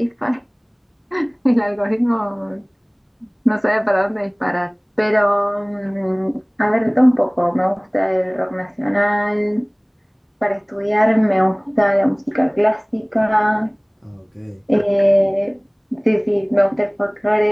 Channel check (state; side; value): identical; both; correlation 1.00